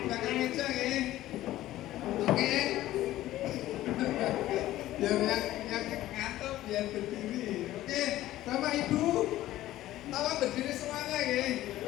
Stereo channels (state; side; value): quieter; right; 14.9 dB